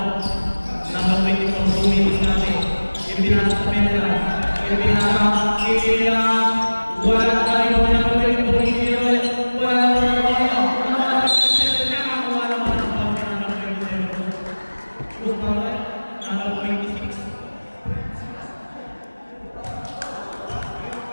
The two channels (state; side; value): inverted; both; correlation -1.00